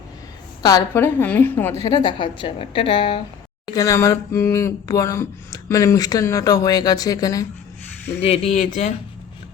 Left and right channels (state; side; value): quieter; right; 7.7 dB